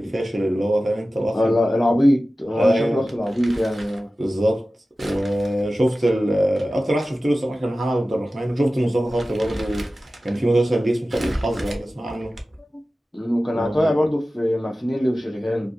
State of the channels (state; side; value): normal; both; correlation 0.95